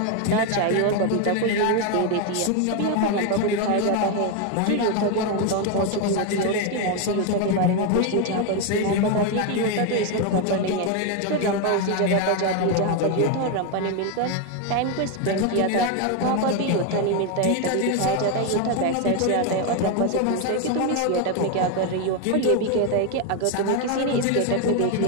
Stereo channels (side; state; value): both; different; correlation 0.01